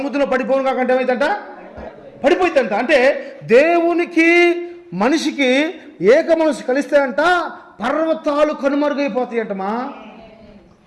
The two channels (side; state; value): both; identical; correlation 1.00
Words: పడిపోను కాకంటే ఏమైందంట? పడిపోయిందంట. అంటే దేవునికి మనిషికి ఏక మనసు కలిస్తే అంట పర్వతాలు కనుమరుగైపోతాయంటమా.